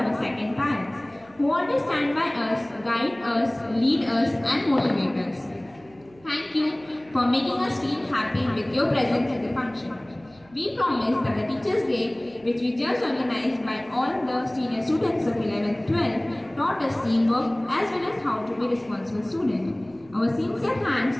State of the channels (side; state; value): right; noise; hum, 28 dB below the sound